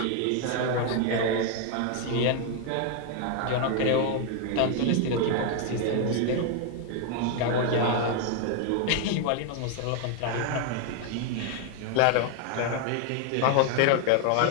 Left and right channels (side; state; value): both; different; correlation 0.01